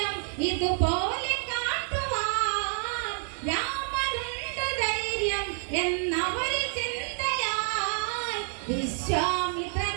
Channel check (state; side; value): silent; left; 59 dB below the other